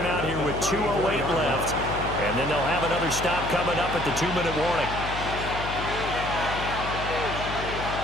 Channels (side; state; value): left; noise; hum, 7 dB below the sound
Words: here with 2:08 left, and then they'll have another stop coming up at the 2-minute warning.